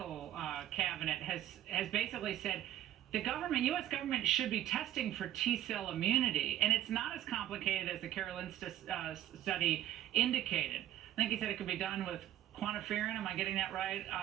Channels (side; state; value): left; quieter; 12.6 dB